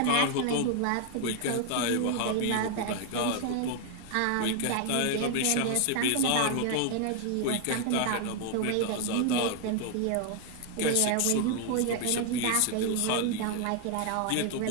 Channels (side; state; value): both; different; correlation 0.00